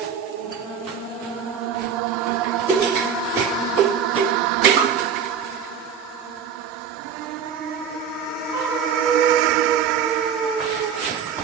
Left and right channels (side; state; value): left; quieter; 7.3 dB